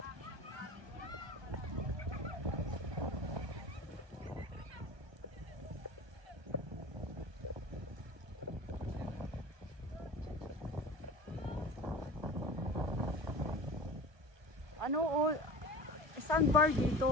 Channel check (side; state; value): left; late; 1.2 ms